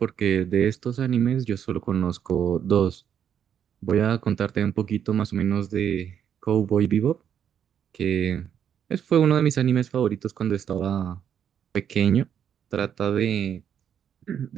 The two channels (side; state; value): left; quieter; 8.7 dB